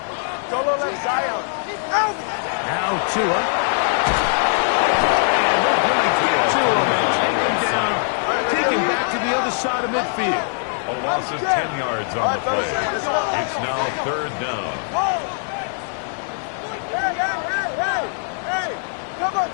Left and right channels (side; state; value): right; silent; 65 dB below the other